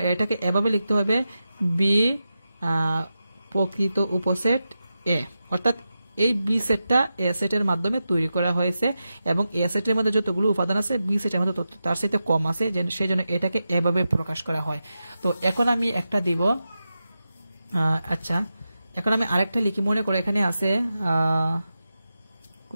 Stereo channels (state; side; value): inverted; both; correlation -0.90